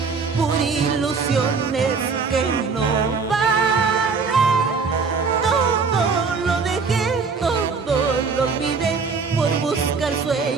por ilusiones que no valen. Lo olvidé por buscar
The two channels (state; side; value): quieter; left; 4.9 dB